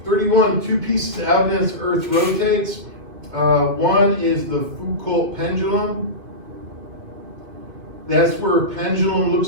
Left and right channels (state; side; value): late; left; 2.5 ms